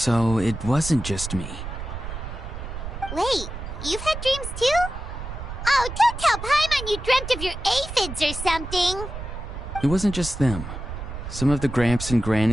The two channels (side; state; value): right; noise; rumble, 8 dB below the sound